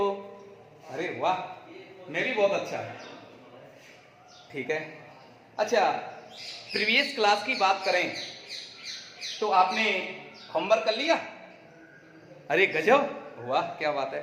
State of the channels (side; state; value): both; identical; correlation 1.00